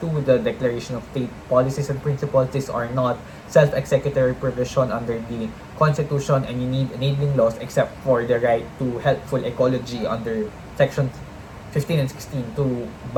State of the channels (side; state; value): both; identical; correlation 1.00